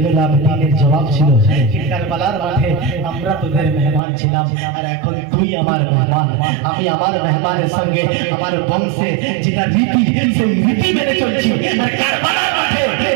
আবেদিনের জবাব ছিল, কারবালার মাঠে আমরা তোদের মেহমান ছিলাম, আর এখন তুই আমার মেহমান। আমি আমার মেহমানের সঙ্গে আমার বংশে যেটা রীতি সেই রীতি মেনে চলছি, আর কারবালার মাঠে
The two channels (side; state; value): left; drops out; at 4.0 s